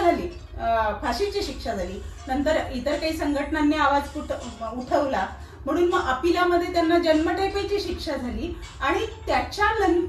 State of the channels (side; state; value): both; identical; correlation 1.00